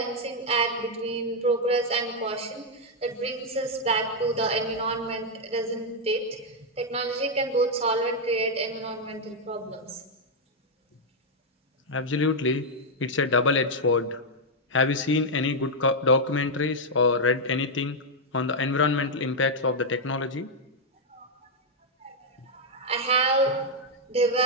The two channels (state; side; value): normal; both; correlation -0.01